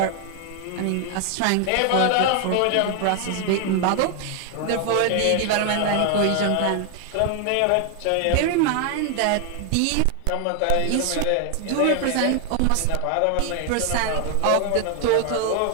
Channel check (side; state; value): both; different; correlation 0.00